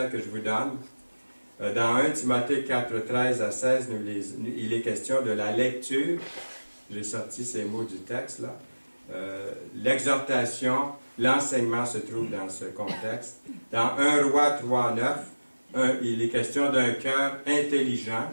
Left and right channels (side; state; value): both; inverted; correlation -1.00